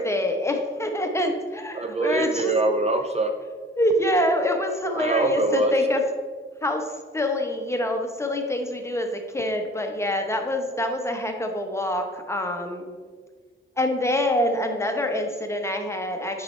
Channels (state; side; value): normal; both; correlation 0.47